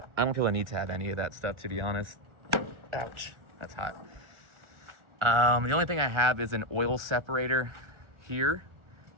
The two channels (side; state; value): left; late; 1.4 ms